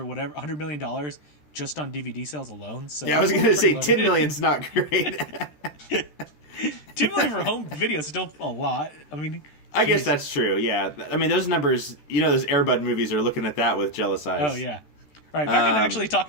whatever, $100 million just on DVD sales alone. So yeah, I was going to say $10 million's not great. $2 million for home video is still a lot. I mean, I guess that's true. Yeah, I mean those numbers. You know, those Air Bud movies are looking at that with jealous eyes. Oh yeah. All right, back in actually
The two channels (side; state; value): right; late; 14 ms